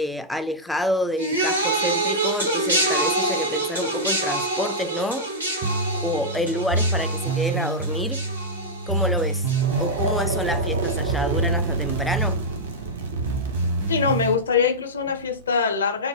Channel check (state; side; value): normal; both; correlation -0.10